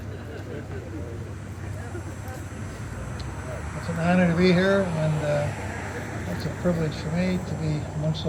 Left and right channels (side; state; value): both; identical; correlation 1.00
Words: It's an honor to be here, and it's a privilege for me to be amongst